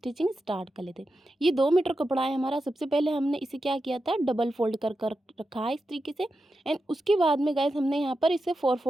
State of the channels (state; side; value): normal; both; correlation 0.89